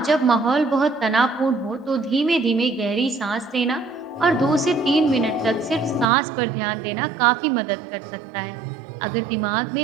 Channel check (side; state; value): left; drops out; at 6.1 s